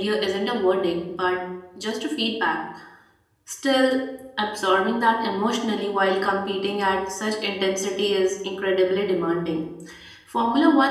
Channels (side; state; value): both; identical; correlation 1.00